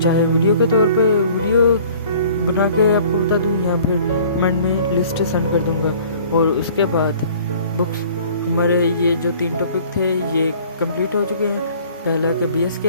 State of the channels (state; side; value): inverted; both; correlation -0.51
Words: वीडियो के तौर पे वीडियो बना के आपको बता दूं या फिर कमेंट में लिस्ट सेंड कर दूंगा। और उसके बाद बुक्स हमारे ये जो 3 टॉपिक थे ये कंप्लीट हो चुके हैं। पहला कि BS